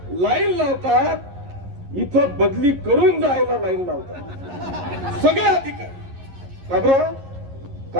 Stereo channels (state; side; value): late; left; 11 ms